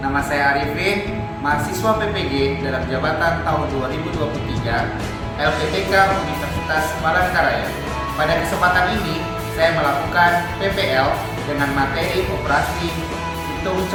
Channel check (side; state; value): both; identical; correlation 1.00